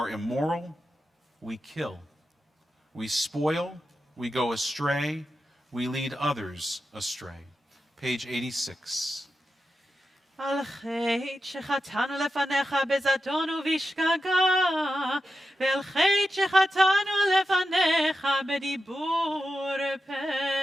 immoral, we kill. We spoil, we go astray, we lead others astray. Page 86. על חטא שחטאנו לפניך בזדון ובשגגה, ועל חטא שחטאנו לפניך בדיבור פה.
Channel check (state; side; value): normal; both; correlation 0.90